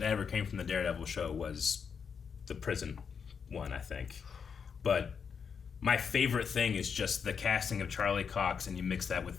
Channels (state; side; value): quieter; right; 6.4 dB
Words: ever came from the Daredevil show was the prison one, I think. But my favorite thing is just the casting of Charlie Cox, and you mix that with